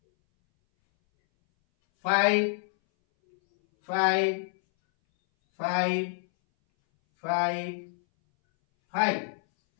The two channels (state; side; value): silent; right; 60 dB below the other